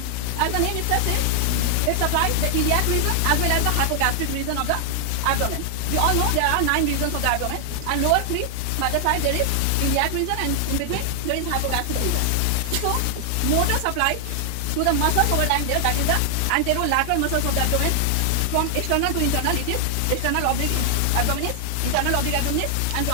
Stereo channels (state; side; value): different; both; correlation 0.00